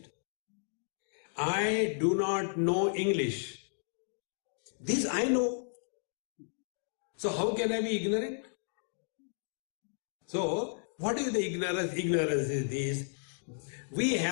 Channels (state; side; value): silent; right; digital silence